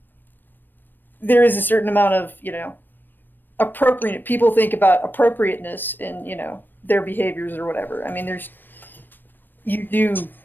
there is a certain amount of, appropriate, people think about appropriateness in, their behaviors or whatever. I mean, you do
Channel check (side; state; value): right; late; 0.093 ms